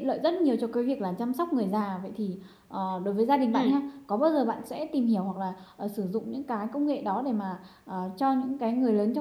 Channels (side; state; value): both; identical; correlation 1.00